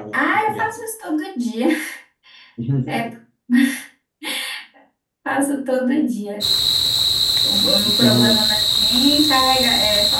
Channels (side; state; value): both; identical; correlation 1.00